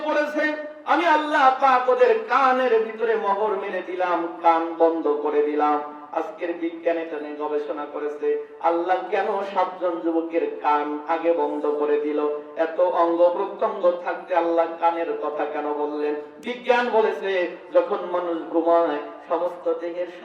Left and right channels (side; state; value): both; identical; correlation 1.00